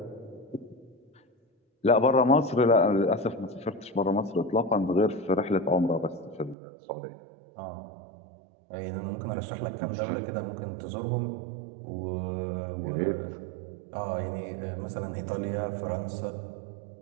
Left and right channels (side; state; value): left; drops out; at 6.6 s